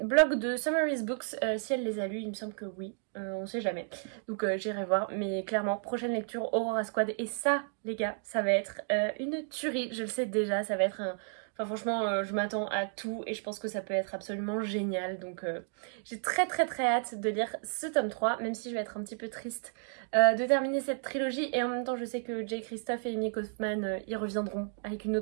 de Summaries Books si elle les a lus, il me semble que oui, on sait jamais, donc j'irai voir. Mais clairement prochaine lecture Aurora Squad, et ça les gars ça va être une tuerie, je le sais déjà, ça va être un... Enfin franchement je m'attends à tout et je pense que ça peut être absolument génial, donc j'ai très hâte de lire ce tome 3, même si je vais être un petit peu triste de terminer cette trilogie. Et en même temps je sais que Jay Christophe et Amy Kaufman ils reviendront avec une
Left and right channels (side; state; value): left; silent; 56 dB below the other